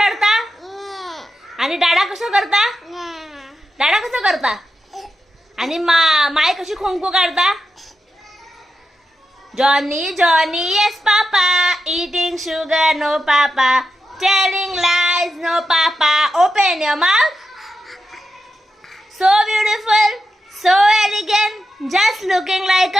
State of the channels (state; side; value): normal; both; correlation 0.88